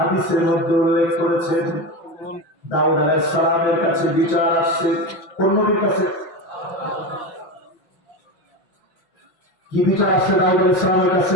মধ্যে উল্লেখ করেছেন দাউদ আলাইহিস সালামের কাছে বিচার আসছে। কোন নবীর কাছে? কি বিচার আসছে দাউদ আলাইহিস সালামের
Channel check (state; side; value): late; right; 5.9 ms